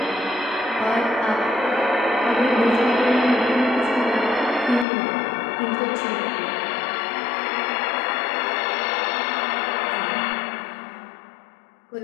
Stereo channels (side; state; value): right; drops out; at 4.9 s